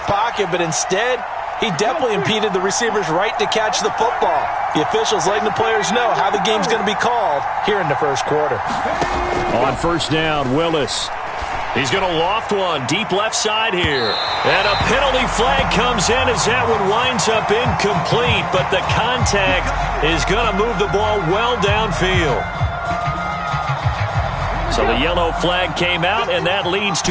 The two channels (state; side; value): identical; both; correlation 1.00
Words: but instead, he definitely impeded the receiver's right to catch the football. The officials letting the players know how the game's going to be called here in the first quarter. On first down, Willis. He's going to loft one deep left side here. And a penalty flag comes in as that one winds up incomplete, but the contact is going to move the ball well downfield. So the yellow flag came out, and that leads